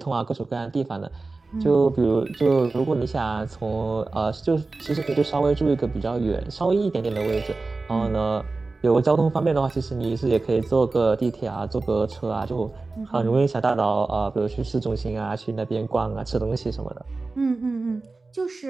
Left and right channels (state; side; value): quieter; left; 3.6 dB